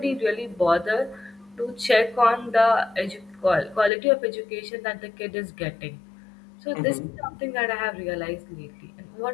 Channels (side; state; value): right; drops out; at 3.9 s